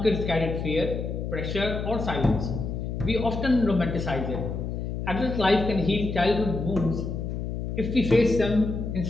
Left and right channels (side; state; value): left; noise; hum, 4 dB below the sound